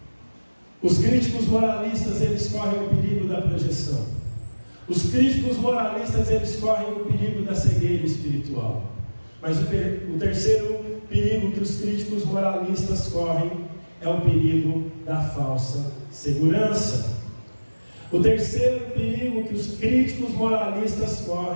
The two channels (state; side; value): inverted; both; correlation -1.00